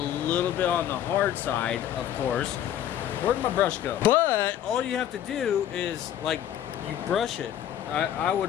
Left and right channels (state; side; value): quieter; right; 10.8 dB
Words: bit on the hard side, of course. Where'd my brush go? But all you have to do is, like, you brush it. I